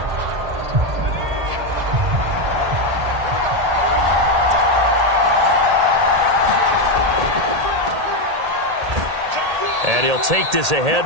And he'll take this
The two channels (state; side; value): late; left; 1.8 ms